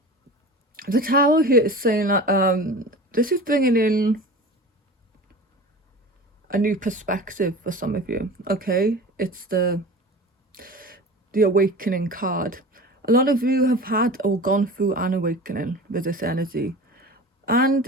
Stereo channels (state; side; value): normal; both; correlation 0.36